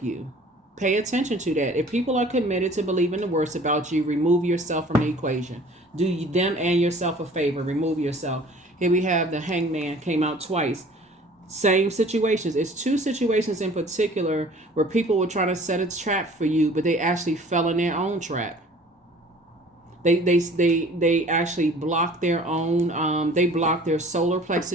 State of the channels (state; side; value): normal; both; correlation 0.49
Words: you. Pay attention to that. If people are committed to believing the worst about you, remove yourself from the equation. Do them and yourself a favor. Remove yourself. Here we have the Hangman, came out twice. Same situations. It's two situations in particular where people were trying to set a trap for you, but they actually fell in their own trap. They actually blocked their own. They blocked their solar